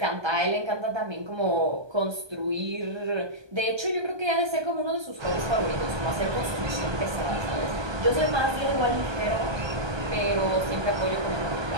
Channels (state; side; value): late; left; 1.2 ms